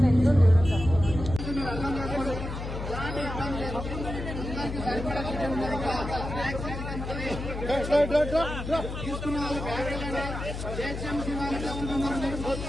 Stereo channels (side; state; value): left; noise; hum, 6 dB below the sound